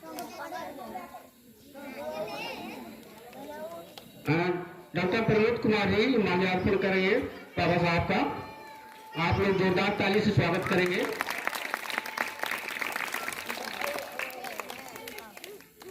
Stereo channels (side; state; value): both; identical; correlation 1.00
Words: डॉक्टर प्रमोद कुमार जी माल्यार्पण करेंगे बाबा साहब का। आप लोग जोरदार ताली से स्वागत करेंगे।